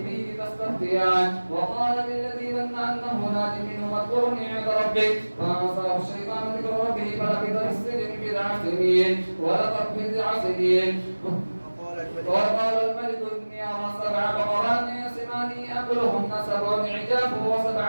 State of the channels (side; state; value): both; inverted; correlation -1.00